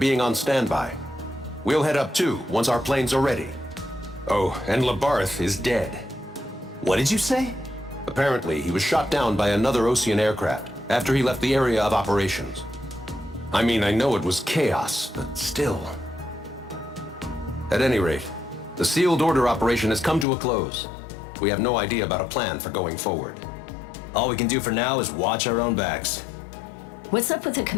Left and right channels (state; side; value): drops out; right; at 20.2 s